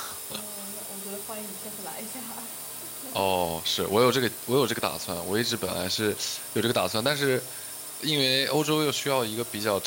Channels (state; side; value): identical; both; correlation 1.00